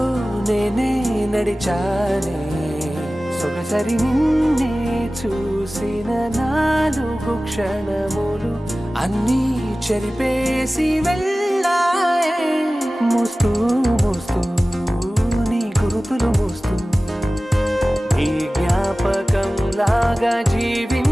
నేనే నడిచానే సొగసరి నిన్నే చూసిన 4 క్షణములు అన్నీ చెరిపేసి వెళ్ళాయే మోస్తూ మోస్తూ నీ గురుతులు మోస్తూ ఈ జ్ఞాపకం లాగా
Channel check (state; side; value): normal; both; correlation 0.97